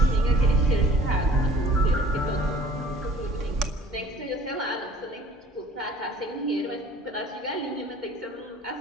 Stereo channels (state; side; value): normal; both; correlation 0.50